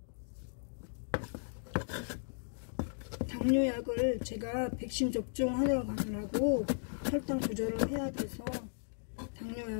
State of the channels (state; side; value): silent; right; digital silence